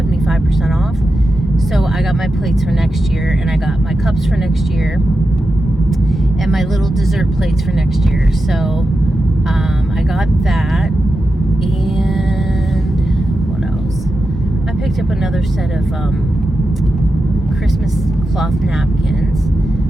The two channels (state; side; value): normal; both; correlation 0.90